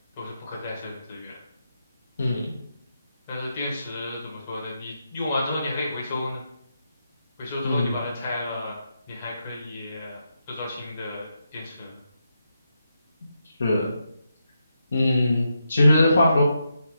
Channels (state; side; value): inverted; both; correlation -0.84